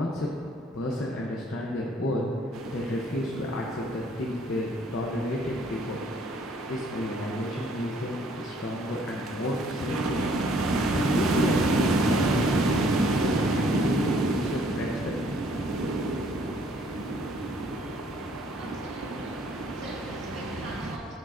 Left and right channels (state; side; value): normal; both; correlation 0.62